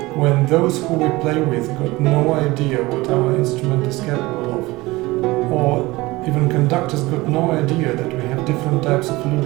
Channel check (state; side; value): quieter; left; 20.7 dB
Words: when those who we play with got no idea what our instrument is capable of, or even conductors got no idea that we have different types of